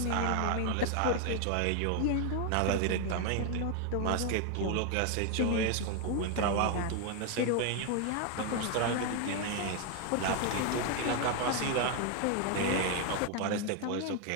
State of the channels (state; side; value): different; both; correlation 0.01